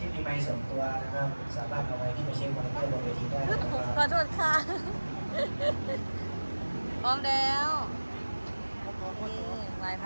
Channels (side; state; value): both; inverted; correlation -1.00